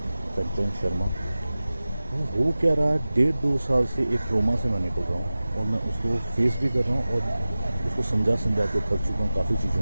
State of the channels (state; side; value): inverted; both; correlation -0.96